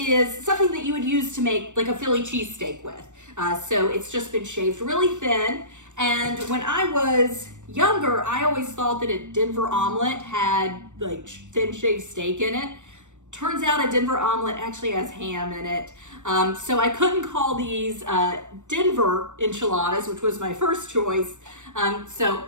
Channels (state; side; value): late; left; 0.85 ms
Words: something that you would use to make like a Philly cheesesteak with. So it's just been shaved really thin. And when I was younger, I always thought that a Denver omelet had like thin shaved steak in it. Turns out a Denver omelet actually has ham in it. So I couldn't call these Denver enchiladas, which was my first choice. So